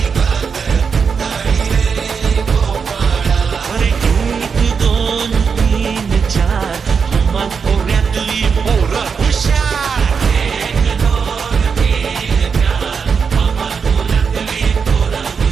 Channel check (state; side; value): quieter; left; 5.9 dB